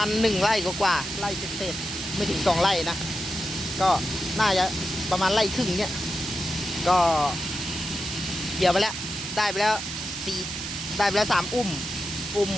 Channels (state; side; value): noise; right; hiss, 6 dB below the sound